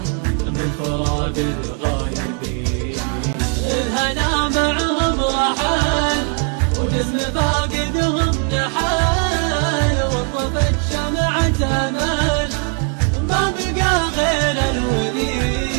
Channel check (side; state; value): left; quieter; 36.5 dB